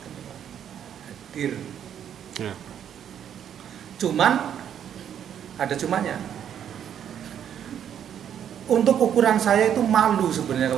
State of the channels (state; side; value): quieter; left; 9.3 dB